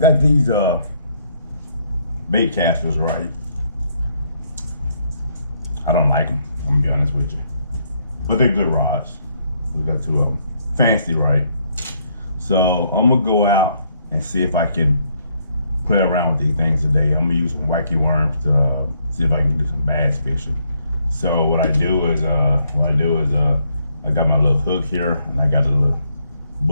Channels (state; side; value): inverted; both; correlation -0.71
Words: these bait casters, right? I don't like them. I'm gonna be honest with you, but they're good rods. We got two of them. Fancy, right? So I'm gonna go out and see if I can play around with these things today. I'm gonna use some wacky worms to see if I can do some bass fishing. So what I do is I got my little hook here, and I got a little